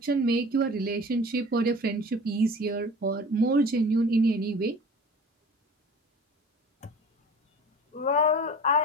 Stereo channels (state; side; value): normal; both; correlation 0.41